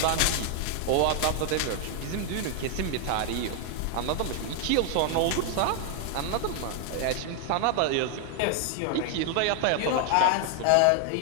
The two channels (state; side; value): different; both; correlation 0.00